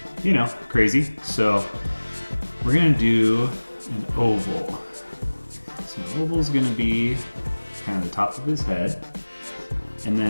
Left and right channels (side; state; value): both; inverted; correlation -1.00